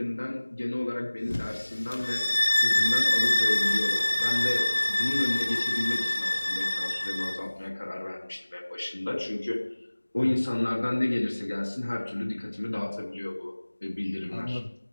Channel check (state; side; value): inverted; both; correlation -1.00